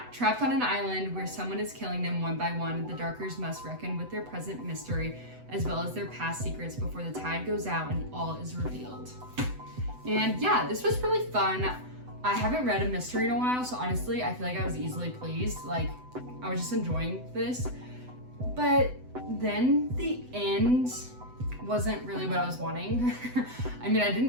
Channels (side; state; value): left; late; 8.0 ms